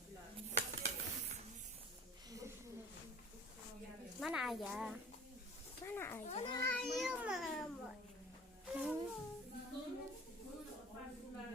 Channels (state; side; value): normal; both; correlation 0.42